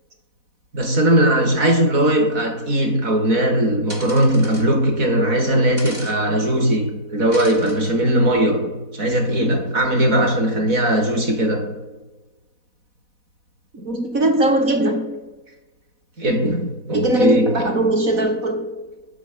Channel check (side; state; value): left; late; 4.1 ms